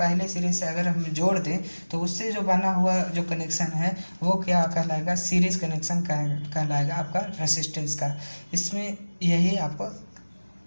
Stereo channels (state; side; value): inverted; both; correlation -1.00